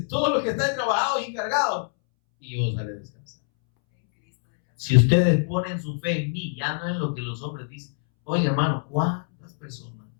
todos los que están trabajados y encargados, y yo os haré descansar. Si ustedes ponen su fe en mí, ya no en lo que los hombres dicen. Oye, hermano, ¿cuántas personas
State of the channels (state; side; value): silent; right; 62 dB below the other